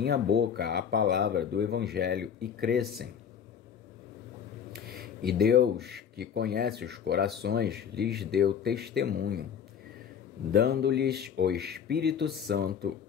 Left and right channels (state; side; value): quieter; right; 7.9 dB